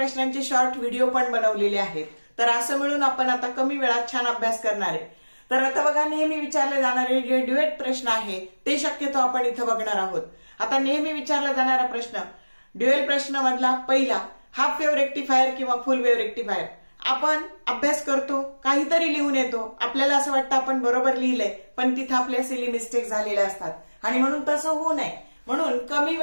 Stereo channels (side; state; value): both; inverted; correlation -1.00